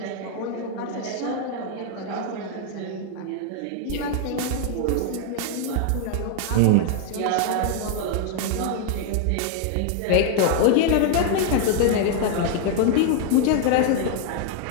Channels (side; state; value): both; different; correlation 0.00